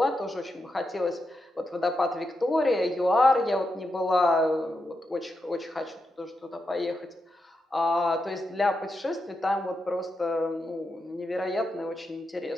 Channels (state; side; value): normal; both; correlation 0.86